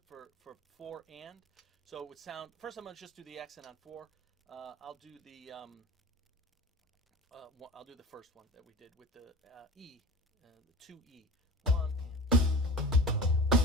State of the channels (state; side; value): normal; both; correlation 0.36